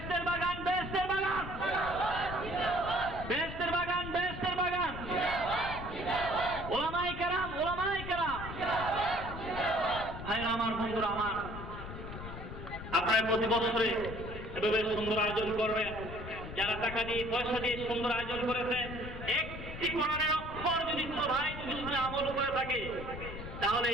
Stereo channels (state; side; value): noise; left; rumble, 9 dB below the sound